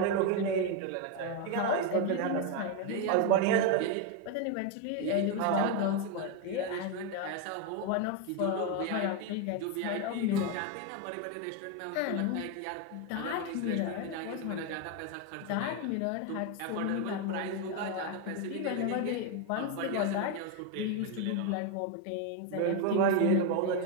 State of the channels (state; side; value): different; both; correlation 0.02